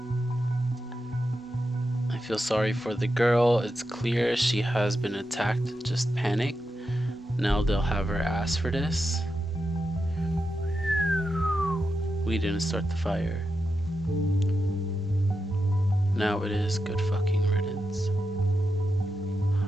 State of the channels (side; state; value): both; normal; correlation 0.88